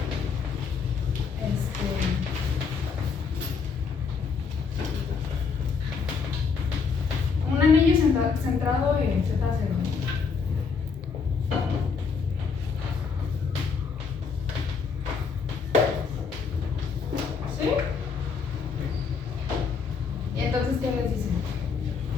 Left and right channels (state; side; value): quieter; right; 5.5 dB